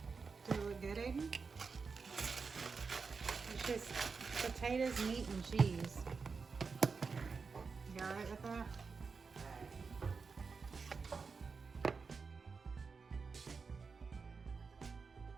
It's just potatoes, meat, and cheese. You all right with that?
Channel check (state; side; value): quieter; left; 5.0 dB